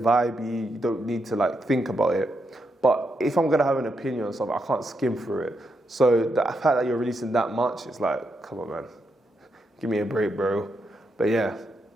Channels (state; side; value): normal; both; correlation 0.82